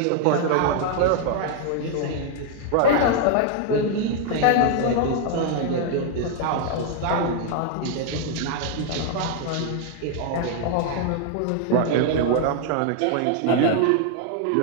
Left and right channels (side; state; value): both; different; correlation 0.00